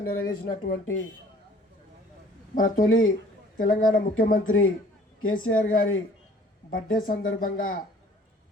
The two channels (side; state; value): both; normal; correlation 0.53